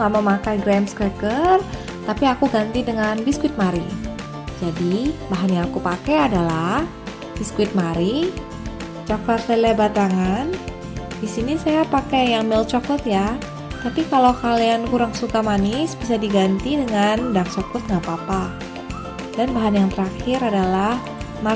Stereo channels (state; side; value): identical; both; correlation 1.00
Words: nggak memakai graham cracker, tapi aku ganti dengan biskuit Marie. Jadi bahan yang aku pakai adalah biskuit Marie, coklat lele batangan. Di sini saya pakai yang milk chocolate ya. Tapi kalau kalian kurang suka manis, bisa diganti dengan dark chocolate nggak apa-apa. Dan bahan yang terakhir adalah